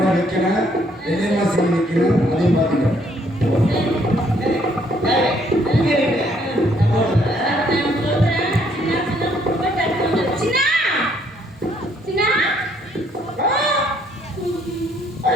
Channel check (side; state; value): both; normal; correlation 0.67